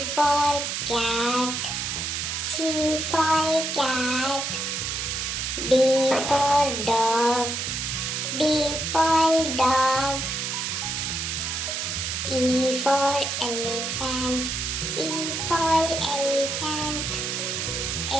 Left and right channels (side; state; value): right; noise; hiss, 2 dB below the sound